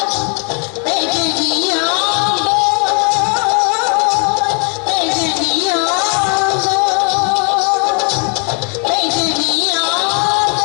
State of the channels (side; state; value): right; quieter; 37.9 dB